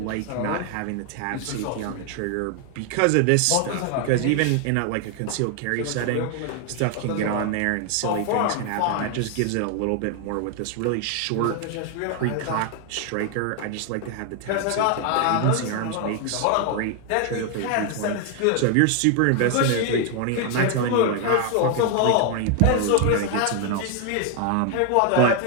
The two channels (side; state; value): both; different; correlation 0.00